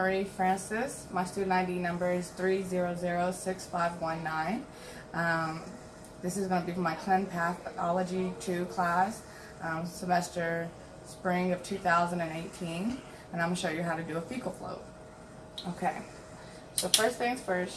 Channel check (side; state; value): both; identical; correlation 1.00